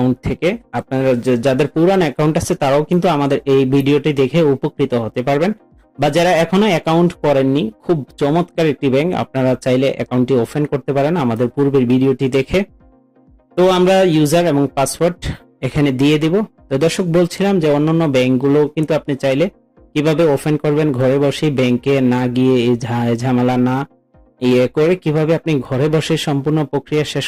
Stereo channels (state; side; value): identical; both; correlation 1.00